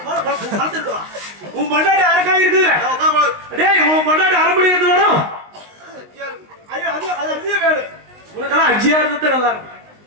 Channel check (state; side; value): late; left; 19 ms